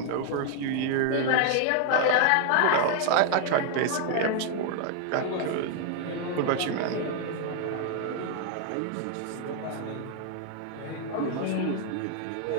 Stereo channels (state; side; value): different; both; correlation 0.00